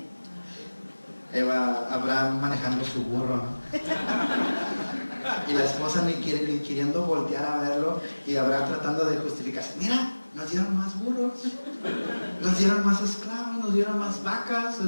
Abraham manejando su burro, ¿no? Y la esposa ni queriendo voltear a verlo, y Abraham tratando de justificarse: mira, nos dieron más burros, nos dieron más esclavos, nos dieron más vacas,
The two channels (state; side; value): inverted; both; correlation -1.00